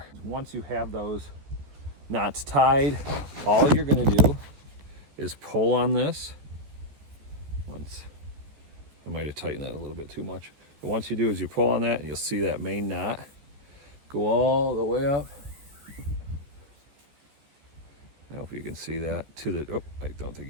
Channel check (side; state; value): left; late; 14 ms